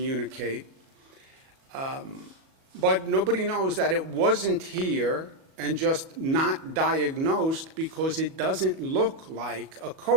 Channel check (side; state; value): left; late; 37 ms